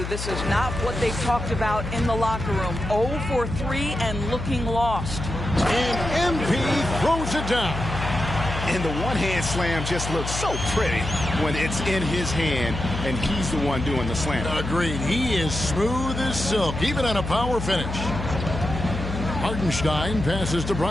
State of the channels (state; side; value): noise; left; hum, 6 dB below the sound